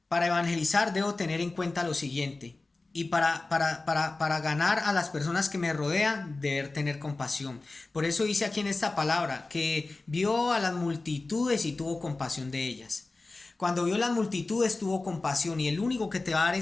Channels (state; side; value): quieter; right; 3.4 dB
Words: Para evangelizar debo tener en cuenta lo siguiente. Y para ganar a las personas que me rodean, deber tener compasión. Por eso dice aquí en esta palabra que vio a las multitudes y tuvo compasión de ellas. Cuando vio las multitudes tuvo compasión, y el único que te va a dar